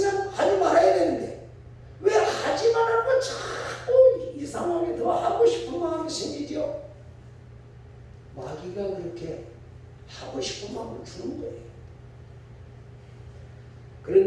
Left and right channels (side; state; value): both; identical; correlation 1.00